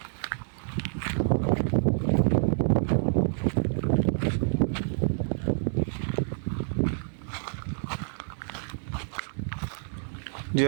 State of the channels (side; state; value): left; silent; 59 dB below the other